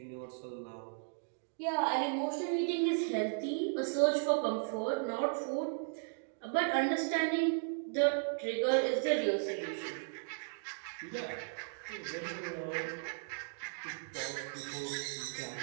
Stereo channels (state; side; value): silent; left; digital silence